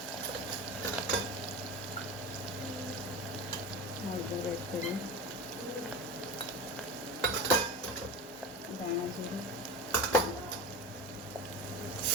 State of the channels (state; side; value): normal; both; correlation 0.28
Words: હળદર એડ કરીએ, ધાણા જીરું,